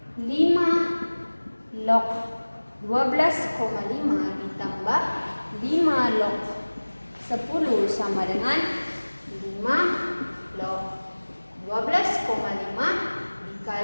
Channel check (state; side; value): inverted; both; correlation -1.00